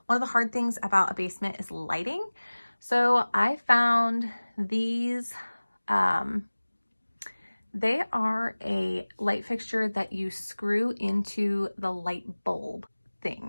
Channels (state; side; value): inverted; both; correlation -1.00